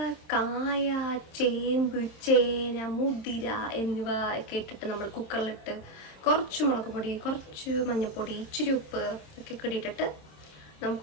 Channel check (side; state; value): right; late; 26 ms